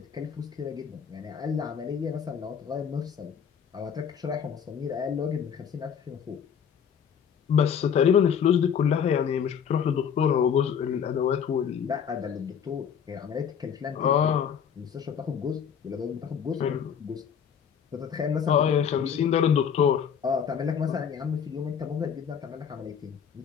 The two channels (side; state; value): right; quieter; 7.7 dB